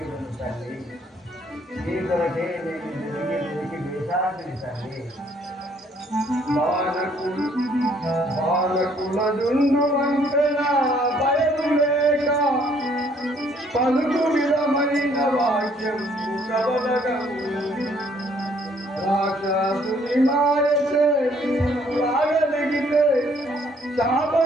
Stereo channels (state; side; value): normal; both; correlation 0.63